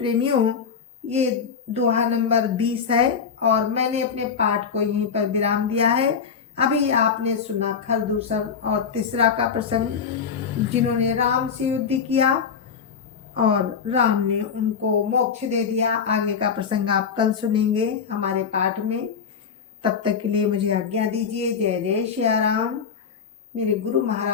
ये दोहा नंबर 20 है और मैंने अपने पाठ को यहीं पर विराम दिया है। अभी आपने सुना खरदूषण और तीसरा का प्रसंग, जिन्होंने राम से युद्ध किया और राम ने उनको मोक्ष दे दिया। आगे का प्रसंग आप कल सुनेंगे हमारे पाठ में। तब तक के लिए मुझे आज्ञा दीजिए। जय जय श्री राम। मेरे गुरु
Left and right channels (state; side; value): quieter; right; 6.5 dB